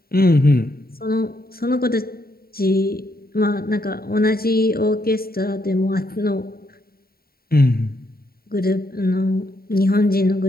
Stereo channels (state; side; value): late; right; 0.43 ms